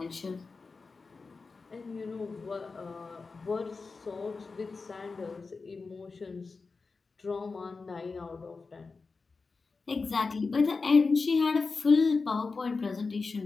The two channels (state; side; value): quieter; right; 4.3 dB